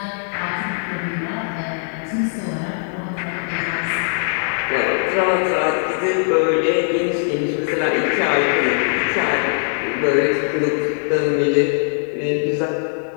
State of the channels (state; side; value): silent; right; 64 dB below the other